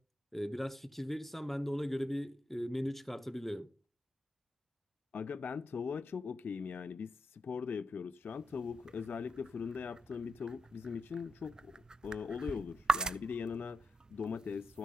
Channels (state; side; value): normal; both; correlation 0.86